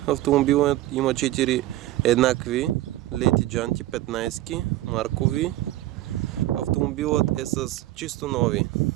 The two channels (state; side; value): quieter; left; 15.7 dB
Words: автомобилът има 4 еднакви леки джанти, 15 маркови. Автомобилът е с чисто нови